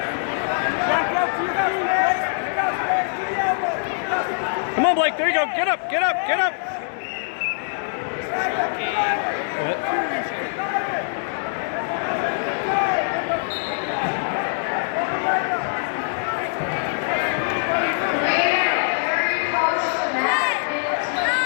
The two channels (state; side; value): silent; right; 57 dB below the other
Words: Back out to your feet, Blake. Come on, Blake. There you go. Get up. Get up. Get up. What?